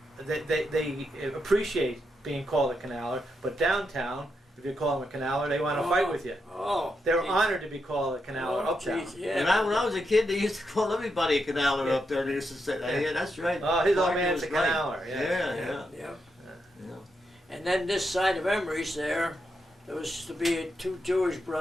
they appreciate being called a canaler, but downtown, if you call them a canaler, they want to fight with you. Oh. They're geez. honored to be called a canaler Oh, uptown. geez, yeah. When I was a kid, they used to call everybody a canaler up there. They used to say, "Yeah, that's right." Oh, his old Parker man's was a right." canaler. Yeah. Yeah. Yeah. Yeah. And then this side of Emery's there was to be two Jewish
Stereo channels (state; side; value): normal; both; correlation 0.83